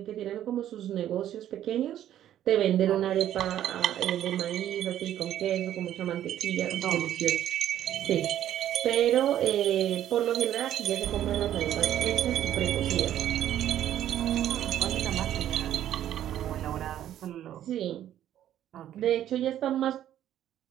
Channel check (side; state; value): left; quieter; 11.6 dB